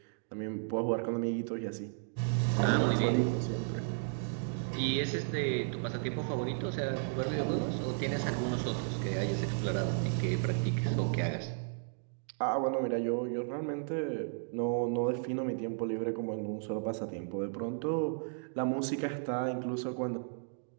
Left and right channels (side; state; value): left; silent; digital silence